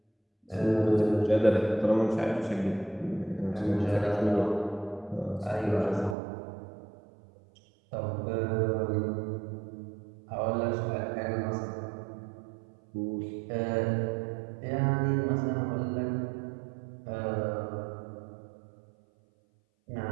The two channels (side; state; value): left; drops out; at 6.2 s